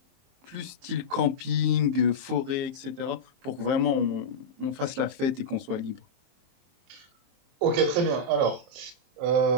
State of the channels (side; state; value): left; late; 23 ms